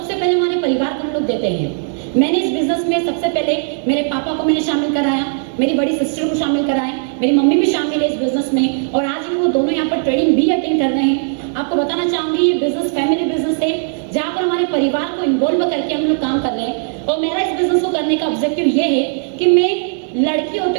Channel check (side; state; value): left; silent; 63 dB below the other